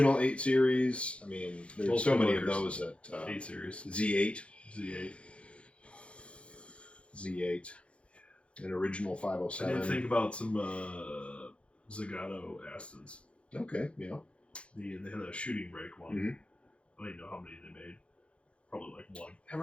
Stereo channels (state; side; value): late; right; 0.060 ms